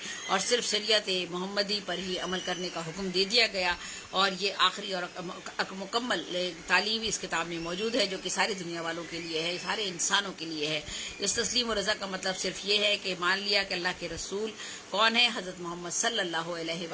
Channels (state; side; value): identical; both; correlation 1.00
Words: اور صرف شریعت محمدی پر ہی عمل کرنے کا حکم دے دیا گیا. اور یہ آخری اور مکمل تعلیم اس کتاب میں موجود ہے جو کہ ساری دنیا والوں کے لیے ہے، سارے انسانوں کے لیے ہے. اس تسلیم و رضا کا مطلب صرف یہ ہے کہ مان لیا کہ اللہ کے رسول کون ہے، حضرت محمد صلی اللہ علیہ